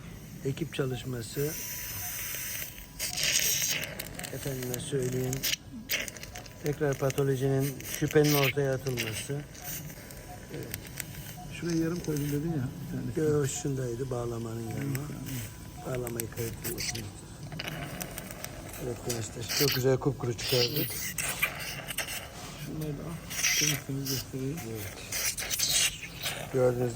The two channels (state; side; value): identical; both; correlation 1.00